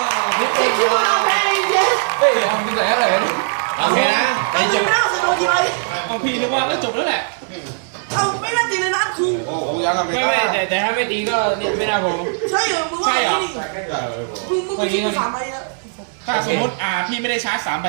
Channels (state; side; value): silent; left; 67 dB below the other